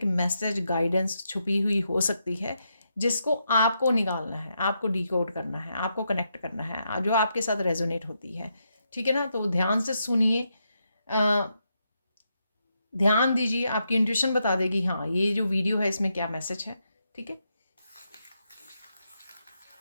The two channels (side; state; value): both; inverted; correlation -0.82